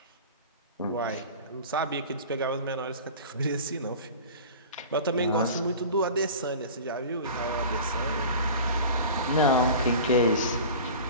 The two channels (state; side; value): inverted; both; correlation -0.37